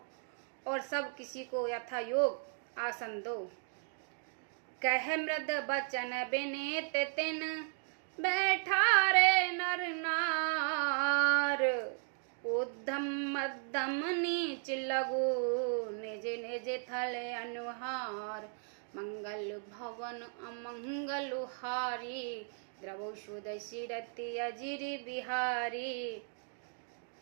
और सब किसी को यथा योग आसन दो। कह मृद बचन बिनीत तिन, बैठा रे नर नार। उद्धम मध्यम नीच लगो, निज निज थल अनुहार। मंगल भवन अमंगल हारी, द्रवौषो दशरथि अजिर बिहारी।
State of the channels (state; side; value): silent; left; 54 dB below the other